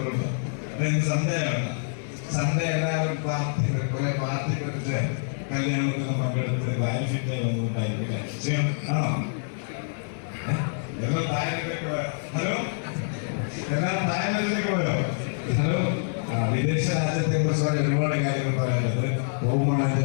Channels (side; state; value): right; silent; 61 dB below the other